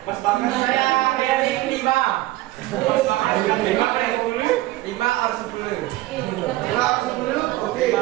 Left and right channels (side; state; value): left; quieter; 17.5 dB